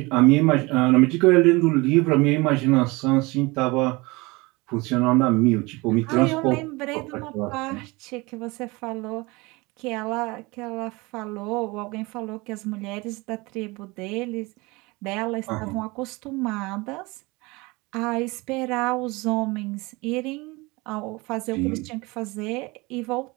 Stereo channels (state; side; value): quieter; left; 24.1 dB